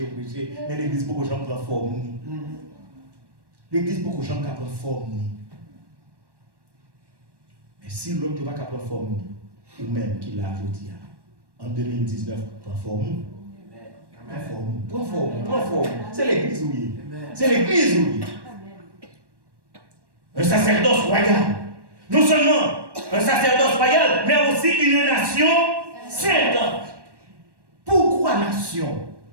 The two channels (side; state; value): left; late; 1.1 ms